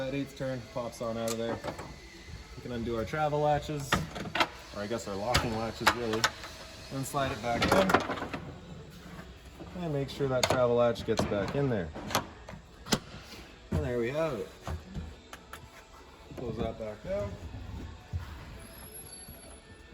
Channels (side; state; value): both; identical; correlation 1.00